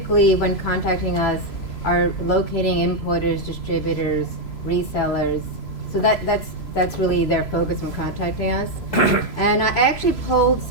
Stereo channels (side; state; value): right; late; 3.0 ms